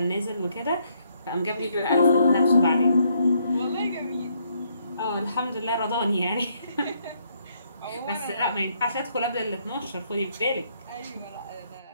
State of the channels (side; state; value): both; inverted; correlation -0.71